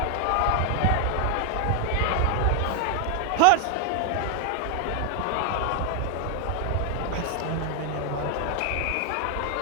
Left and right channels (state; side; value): different; both; correlation 0.00